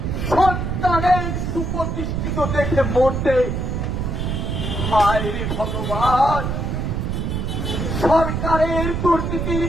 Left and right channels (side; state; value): right; noise; rumble, 1 dB below the sound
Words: সন্তানের সুপ্রতিষ্ঠিত দেখে মরতে। হায় রে ভগবান, সরকারের দুর্নীতির